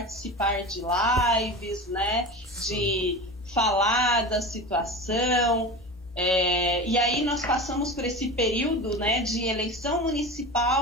de lives, né, de falar da situação. E aí nós passamos por esse período, né, de eleição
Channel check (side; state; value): both; normal; correlation 0.30